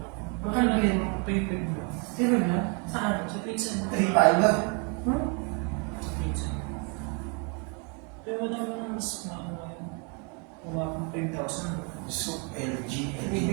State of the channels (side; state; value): left; quieter; 34.6 dB